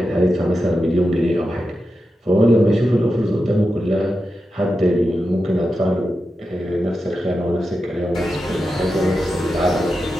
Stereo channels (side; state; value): both; normal; correlation 0.90